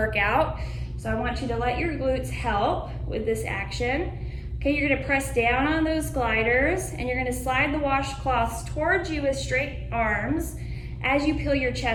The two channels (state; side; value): identical; both; correlation 1.00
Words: So I want you to let your glutes help with this action. Okay, you're gonna press down on those gliders and you're gonna slide the washcloths towards you with straight arms as you peel your